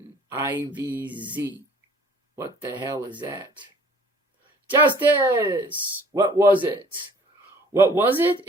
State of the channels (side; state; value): both; normal; correlation 0.53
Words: IVZ. What the hell is that? Justice! What was it? What was it?